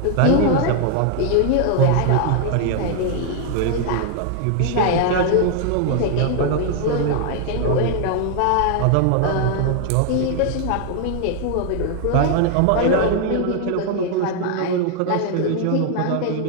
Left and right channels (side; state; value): both; different; correlation 0.00